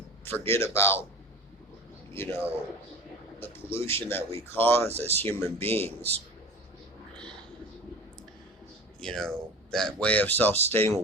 forget about, the pollution that we cause as human beings, that way of self-sustaining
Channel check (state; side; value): normal; both; correlation 0.36